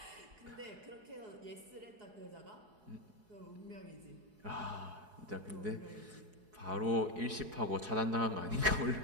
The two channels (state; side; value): late; left; 4.7 ms